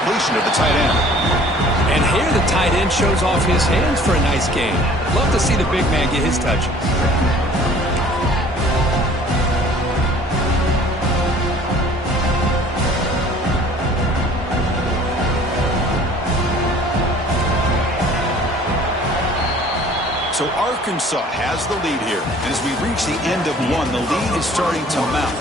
of the tight end. And here the tight end shows off his hands for a nice game. Love to see the big man get his touches. So Arkansas has the lead here. And as we reach the end of one, the lead is starting to mount.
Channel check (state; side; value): normal; both; correlation 0.51